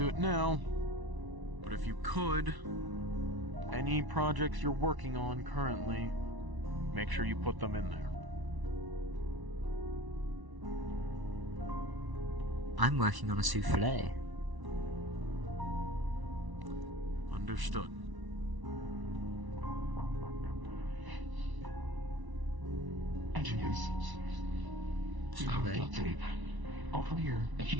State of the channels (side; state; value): left; late; 1.1 ms